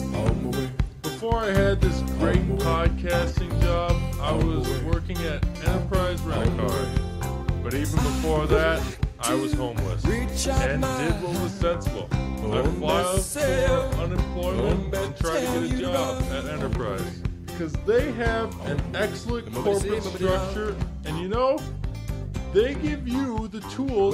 Before I had this great podcasting job, I was working at Enterprise Rent-A-Car. But even before that, I was homeless and did what was sensible. I filed for unemployment and tried to get a job at Enterprise. Because they have an excellent corporate structure and you know, they give you the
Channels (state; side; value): identical; both; correlation 1.00